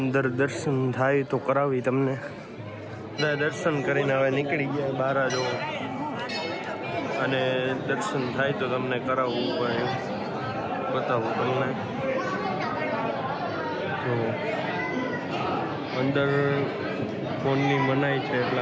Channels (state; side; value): identical; both; correlation 1.00